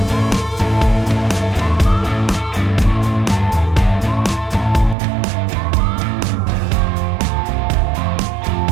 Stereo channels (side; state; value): left; drops out; at 5.0 s